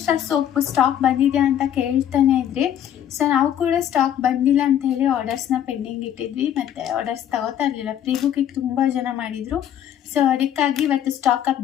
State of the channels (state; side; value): quieter; right; 10.4 dB